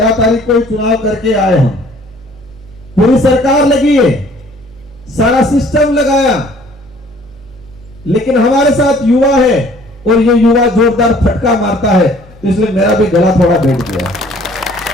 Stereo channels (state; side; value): noise; right; hum, 23 dB below the sound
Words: तारीख को चुनाव करके आए हम। पूरी सरकार लगी है, सारा सिस्टम लगाया, लेकिन हमारे साथ युवा है, और ये युवा जोरदार फटका मारता है, तो इसलिए मेरा भी गला थोड़ा बैठ गया।